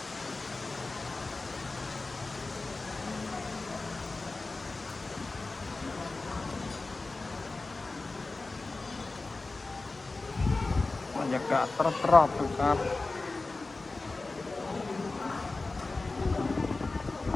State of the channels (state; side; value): quieter; right; 3.5 dB